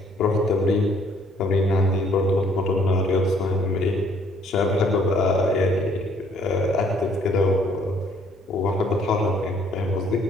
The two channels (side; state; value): both; normal; correlation 0.63